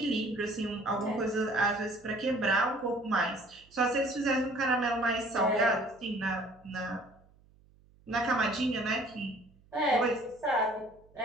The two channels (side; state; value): right; noise; hum, 29 dB below the sound